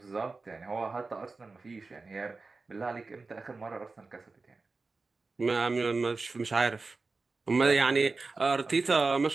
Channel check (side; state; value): left; quieter; 3.9 dB